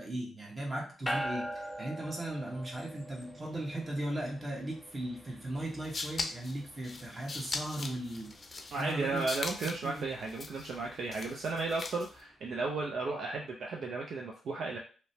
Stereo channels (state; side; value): normal; both; correlation 0.84